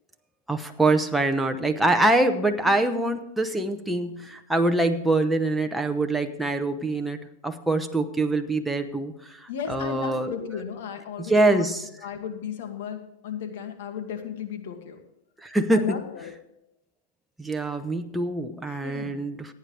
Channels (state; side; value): normal; both; correlation 0.69